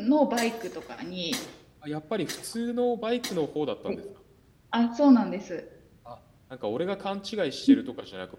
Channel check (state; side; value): identical; both; correlation 1.00